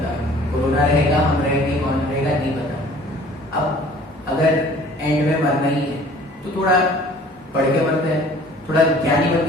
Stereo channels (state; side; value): normal; both; correlation 0.50